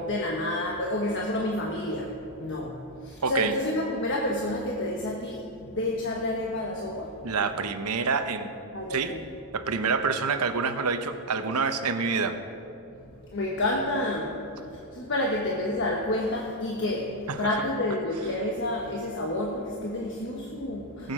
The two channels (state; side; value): normal; both; correlation -0.01